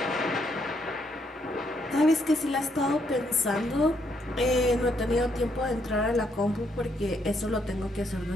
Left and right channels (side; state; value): both; normal; correlation 0.74